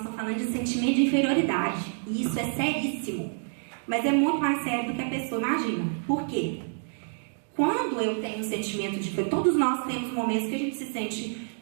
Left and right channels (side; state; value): left; silent; digital silence